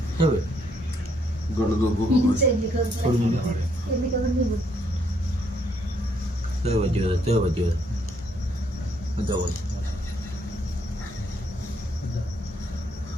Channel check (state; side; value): normal; both; correlation 0.71